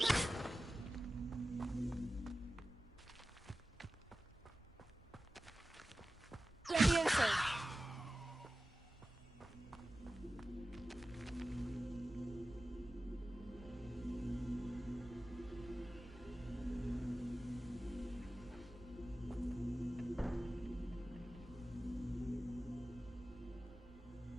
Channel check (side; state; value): both; normal; correlation 0.95